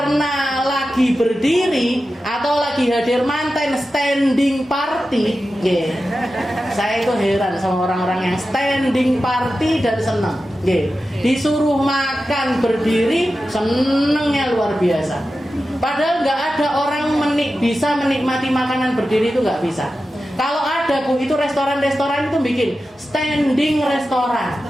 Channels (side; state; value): both; normal; correlation 0.93